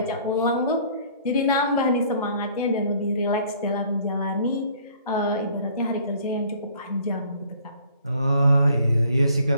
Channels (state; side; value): inverted; both; correlation -0.56